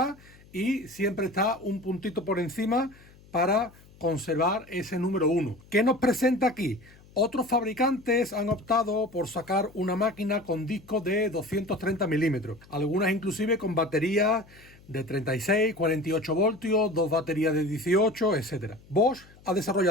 y siempre está un puntito por encima para conservar ese número 1. ¿Qué nos presenta aquí? Otros fabricantes han optado por sacar una máquina con discos de 230 milímetros, algunas inclusive con baterías de 36, 48 voltios, dos baterías de 18, etc. Bosch ha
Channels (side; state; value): left; noise; hum, 25 dB below the sound